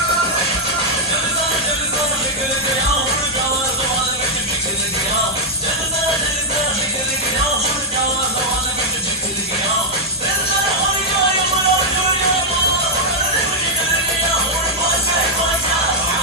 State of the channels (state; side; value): normal; both; correlation -0.04